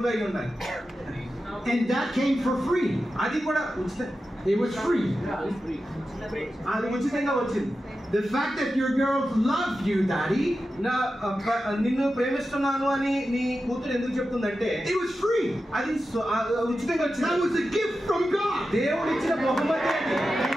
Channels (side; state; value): both; normal; correlation 0.92